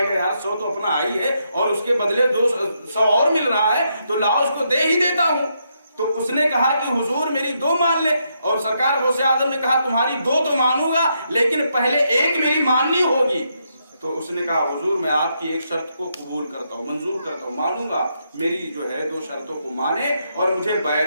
گا یار 100 تو اپنا آئی ہے اور اس کے بدلے 100 اور مل رہا ہے تو لاؤ اس کو دے ہی دیتا ہوں. تو اس نے کہا کہ حضور میری 2 مان لے, اور سرکار غوث اعظم نے کہا تمہاری 2 تو مانوں گا لیکن پہلے ایک میری ماننی ہوگی. تو اس نے کہا حضور میں آپ کی ایک شرط کو قبول کرتا ہوں, منظور کرتا ہوں, مانوں گا, میری جو ہے 2 شرطوں کو مانے اور مجھے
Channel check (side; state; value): both; inverted; correlation -0.79